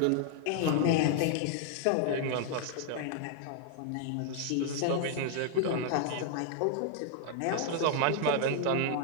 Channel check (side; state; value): both; different; correlation 0.00